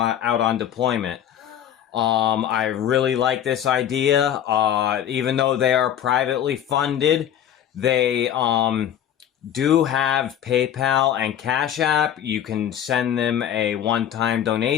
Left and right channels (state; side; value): quieter; right; 10.1 dB